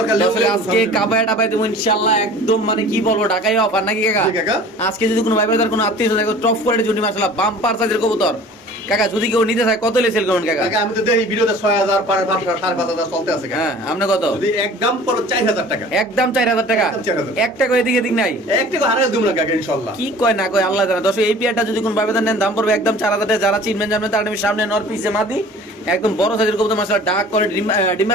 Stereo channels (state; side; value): normal; both; correlation 0.45